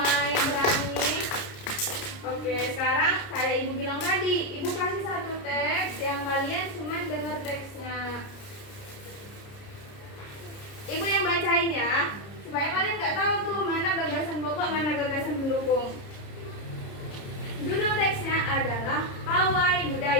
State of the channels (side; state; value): right; late; 30 ms